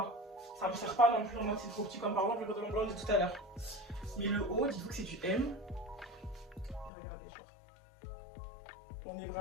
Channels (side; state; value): right; drops out; at 6.9 s